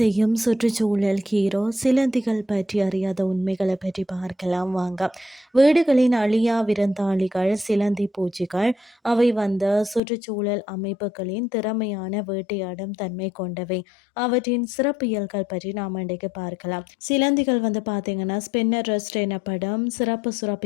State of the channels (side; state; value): right; drops out; at 10.0 s